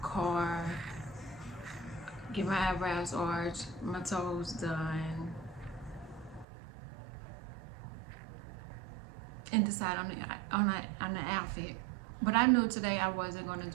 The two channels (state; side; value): drops out; left; at 6.5 s